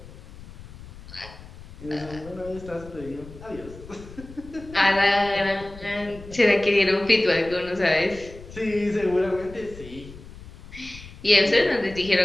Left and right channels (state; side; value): noise; left; rumble, 17 dB below the sound